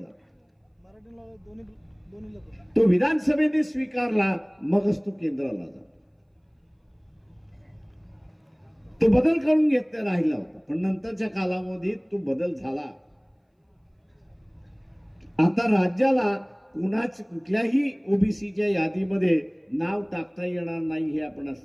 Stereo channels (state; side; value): identical; both; correlation 1.00